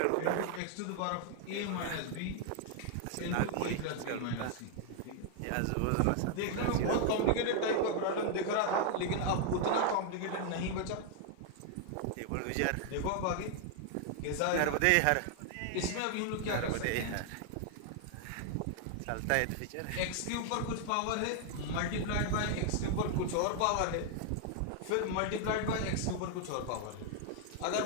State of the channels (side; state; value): both; different; correlation 0.00